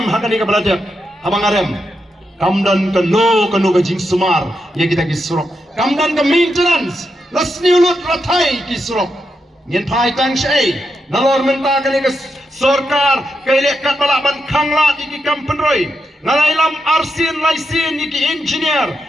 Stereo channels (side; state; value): both; normal; correlation 0.84